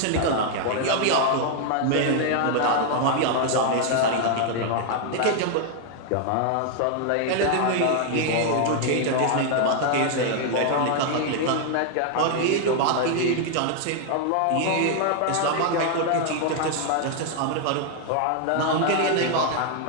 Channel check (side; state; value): both; different; correlation 0.00